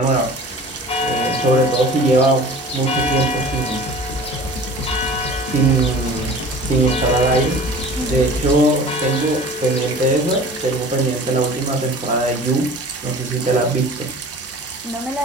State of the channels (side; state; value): both; normal; correlation 0.42